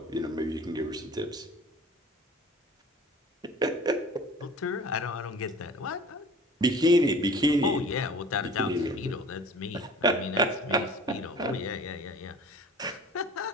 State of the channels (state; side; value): normal; both; correlation 0.44